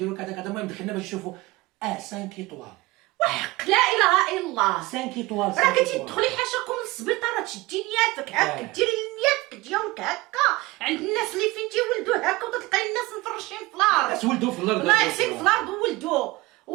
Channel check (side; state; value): left; quieter; 20.8 dB